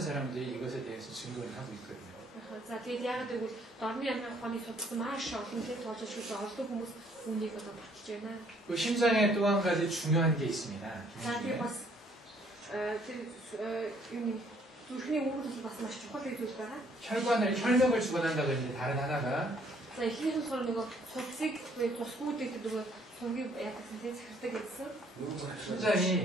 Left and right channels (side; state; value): both; normal; correlation 0.63